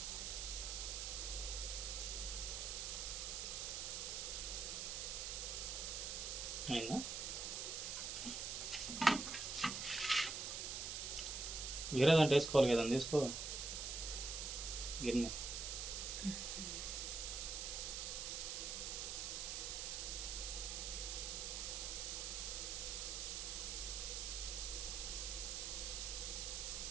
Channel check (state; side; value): noise; right; hiss, 3 dB below the sound